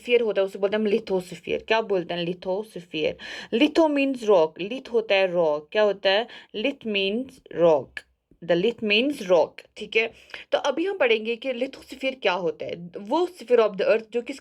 होता है, उसे बोलते हैं हम लिथोस्फीयर। क्या बोलते हैं? Lithosphere. Litho means rock, lith होता है रॉक। क्या होता है? Lith means rock. The lith means rock. ठीक है, तो अभी हम पढ़ेंगे कि लिथोस्फीयर क्या होता है। वो स्फीयर ऑफ द अर्थ जो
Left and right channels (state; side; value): identical; both; correlation 1.00